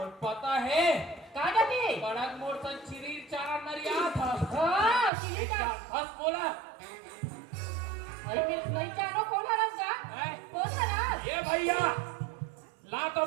और पता है कहाँ जाती है बड़ा मोर सन चिरी चारा नरिया था हाँ किसी का हंस बोला आई मैं नहीं जानो कौन है रंगा हैं? कौन है ना ये भैया ला तो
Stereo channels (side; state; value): left; drops out; at 5.1 s